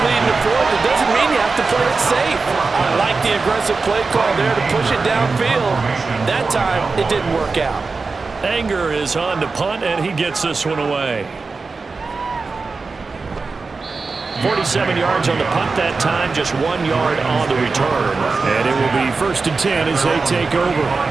lead in the 4th, it doesn't mean you have to play it safe. I like the aggressive play call there to push it downfield. That time, it didn't work out. Anger is on to punt, and he gets this one away. 47 yards on the punt that time, just 1 yard on the return. And it will be 1st and 10 as they take over.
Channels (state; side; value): quieter; left; 4.2 dB